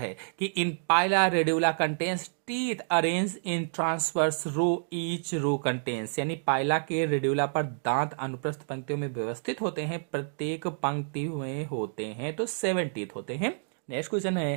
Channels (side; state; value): left; silent; digital silence